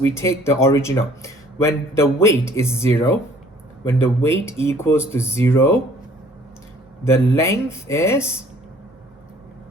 take the original. When the weight is 0, when the weight equals to 0, the length is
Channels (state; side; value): normal; both; correlation 0.57